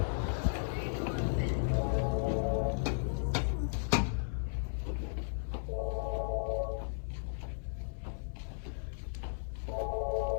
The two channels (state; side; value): silent; right; 54 dB below the other